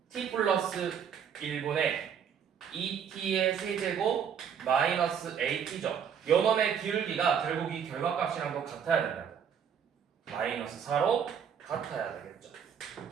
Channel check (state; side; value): quieter; left; 7.7 dB